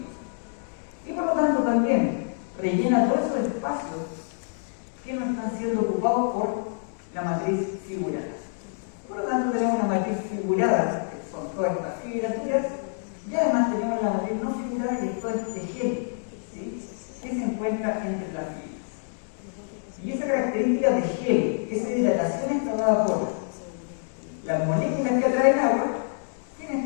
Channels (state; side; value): silent; right; digital silence